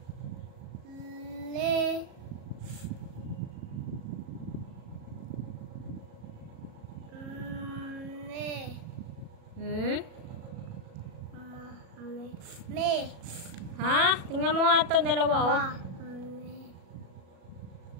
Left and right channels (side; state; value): left; late; 37 ms